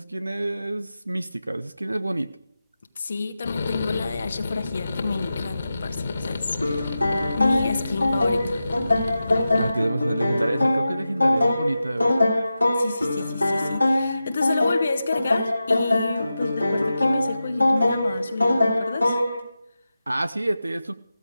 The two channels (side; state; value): both; inverted; correlation -0.92